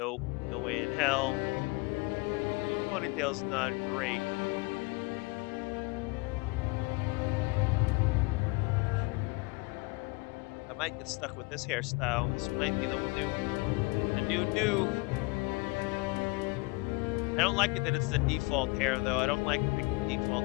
No way in hell. Ponytail's not great. I might get stuck with this hairstyle. This might be the new. I don't like it that it's the default hair though. I don't like picking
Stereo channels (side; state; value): right; quieter; 25.9 dB